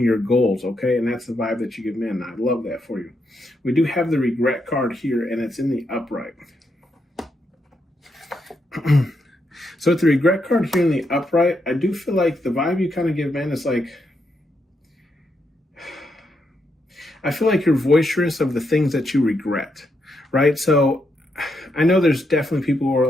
your goals. Okay. And that's the vibe that you give men. I love that for you. We do have the regret card here, and it's in the upright. So with the regret card here in the upright, I do feel like the vibe you kind of give men is like, I feel like you're boisterous of the things that you regret, right? So I know there's definitely people who are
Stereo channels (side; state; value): both; normal; correlation 0.80